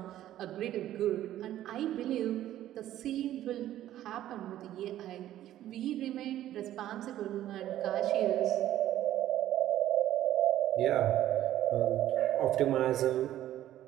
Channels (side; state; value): left; quieter; 12.9 dB